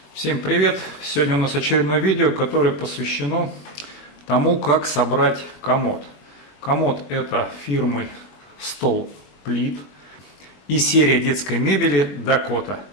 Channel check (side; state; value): right; late; 21 ms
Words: Всем привет! Сегодня у нас очередное видео, которое посвящено тому, как собрать комод. Комод это фирмы Столплит и серия детской мебели Dakota.